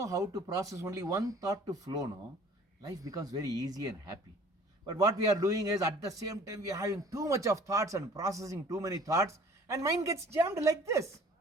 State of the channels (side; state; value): both; normal; correlation 0.50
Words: how to process only one thought to flow, no, life becomes very easy and happy. But what we are doing is at the same time we are having too much of thoughts and processing too many thoughts, and mind gets jammed like this.